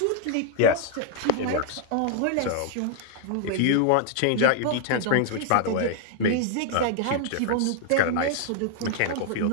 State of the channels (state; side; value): different; both; correlation 0.00